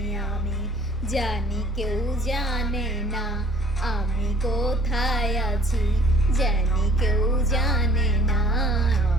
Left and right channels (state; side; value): normal; both; correlation 0.56